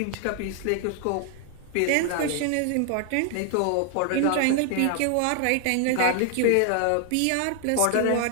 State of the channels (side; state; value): both; different; correlation 0.00